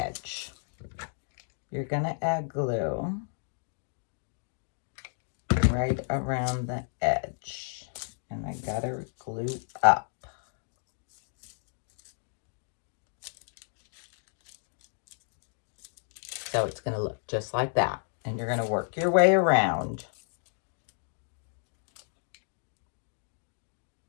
You're going to add glue right around the edge. And I got to glue up. So it's going to look just like that. And you're going to work your way around.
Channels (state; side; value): silent; right; digital silence